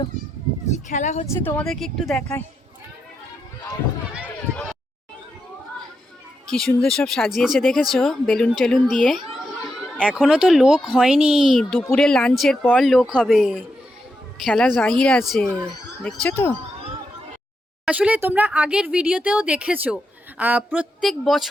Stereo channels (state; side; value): normal; both; correlation 0.84